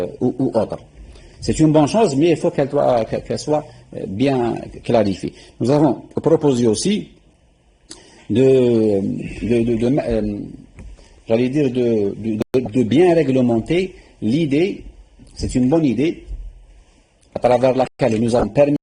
ou autres. C'est une bonne chose, mais il faut qu'elle soit bien clarifiée. Nous avons proposé aussi de bien réglementer l'idée, c'est une bonne idée, à travers laquelle nous avons permis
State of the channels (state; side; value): identical; both; correlation 1.00